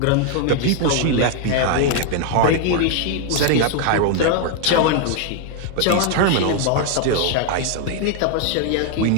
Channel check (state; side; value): different; both; correlation 0.00